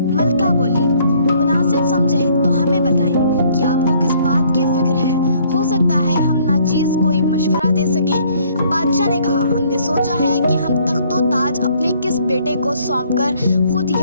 بولی، مناسب سمجھے تو ہمیں بتائیں کہ آپ کو کس بات کی فکر ہے، ہو سکتا ہے ہم ناچیز کوئی مشورہ دے سکیں۔ بادشاہ نے کہا، ہم نے سوچا ہے کہ ہم تخت و تاج اپنے کس بیٹے کو سونپ کر خود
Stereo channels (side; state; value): both; inverted; correlation -0.63